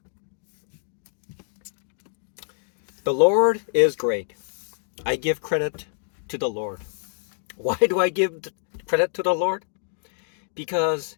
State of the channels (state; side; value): silent; right; digital silence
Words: The Lord is great. I give credit to the Lord. Why do I give credit to the Lord? Because